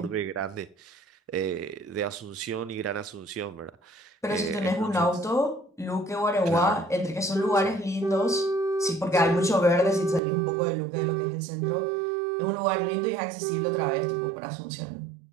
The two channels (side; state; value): left; drops out; at 10.2 s